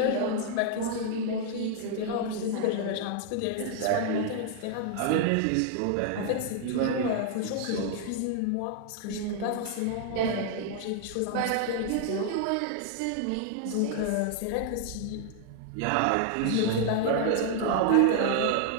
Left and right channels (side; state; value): both; different; correlation 0.00